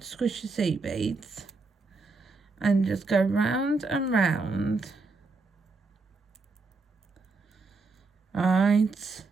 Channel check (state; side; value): quieter; left; 3.9 dB